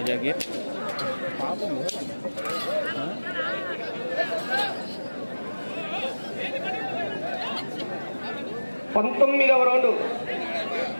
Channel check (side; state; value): both; inverted; correlation -1.00